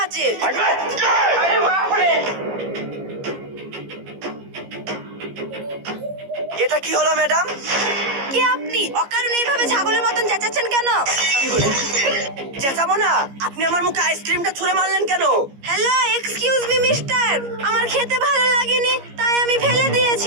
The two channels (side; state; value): left; late; 15 ms